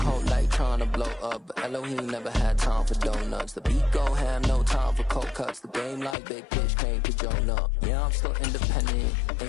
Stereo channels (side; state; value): right; drops out; at 6.2 s